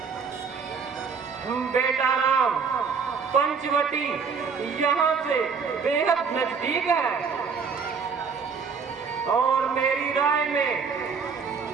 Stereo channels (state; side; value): quieter; left; 5.6 dB